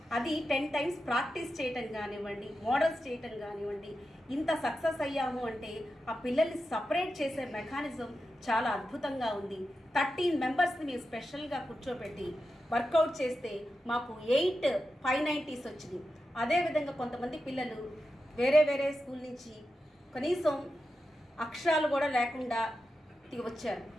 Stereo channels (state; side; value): normal; both; correlation 0.90